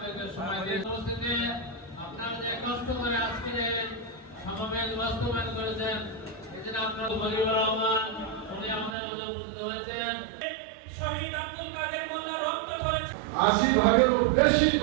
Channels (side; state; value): left; drops out; at 9.0 s